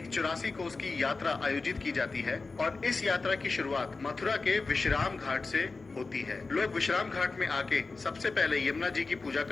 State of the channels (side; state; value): right; quieter; 3.9 dB